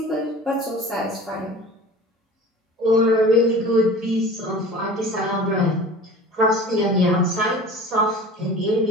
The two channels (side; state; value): both; normal; correlation 0.39